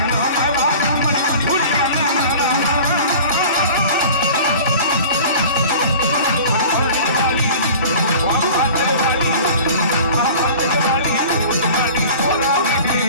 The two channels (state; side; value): inverted; both; correlation -0.41